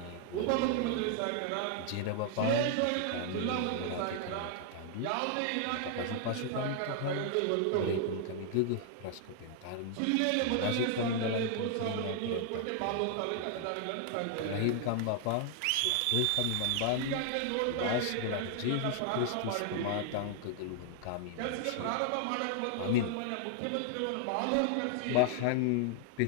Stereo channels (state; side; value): different; both; correlation 0.00